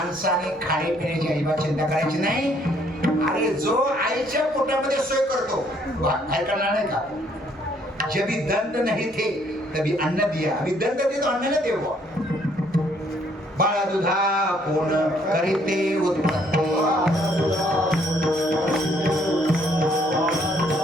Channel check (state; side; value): normal; both; correlation 0.66